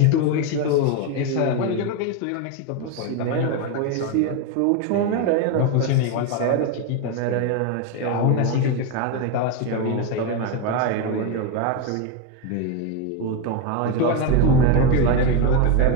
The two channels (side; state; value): both; different; correlation 0.03